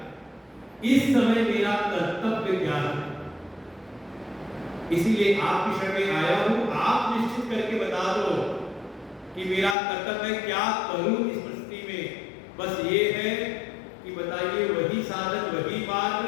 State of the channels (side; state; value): right; drops out; at 9.8 s